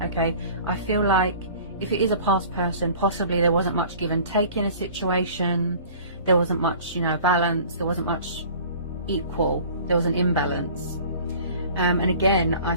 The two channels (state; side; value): inverted; both; correlation -0.46